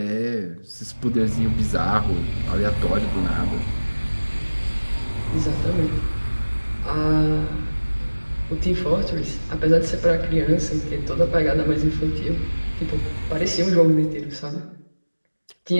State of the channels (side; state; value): both; inverted; correlation -1.00